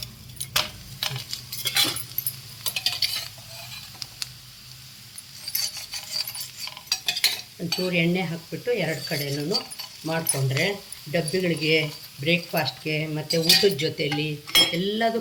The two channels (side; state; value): both; identical; correlation 1.00